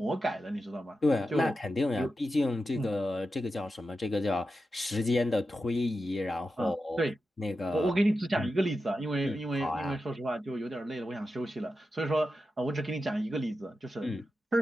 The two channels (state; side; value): normal; both; correlation 0.90